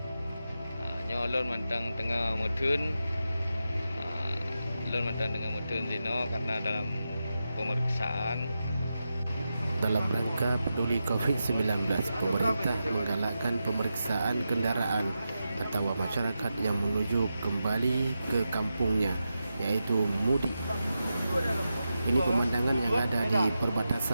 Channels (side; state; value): both; inverted; correlation -0.89